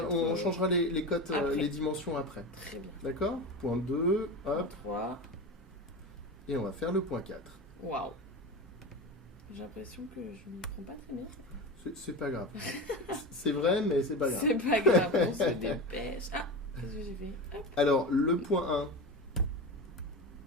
mettre, on changera les cotes, après. les dimensions après. Très bien. D'accord? Point 2, hop, 3. et on va faire le point 4. Waouh. J'ai l'impression que je m'y prends pas très bien. C'est pas grave. C'est vrai, mais c'est pas grave. C'est pas grave, on se dépêche. Ah, qu'est-ce que j'ai fait? Hop. Alors, le point 1.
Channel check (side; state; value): both; normal; correlation 0.25